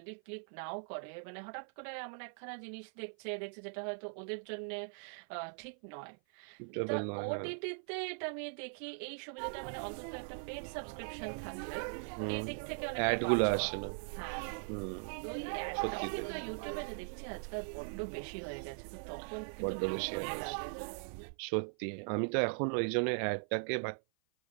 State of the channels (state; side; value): silent; left; 51 dB below the other